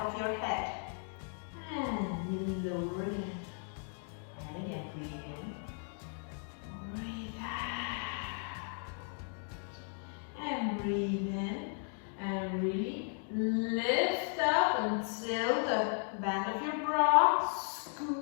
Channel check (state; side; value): silent; right; 54 dB below the other